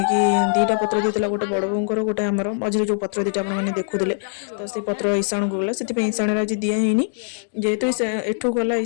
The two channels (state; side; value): silent; right; digital silence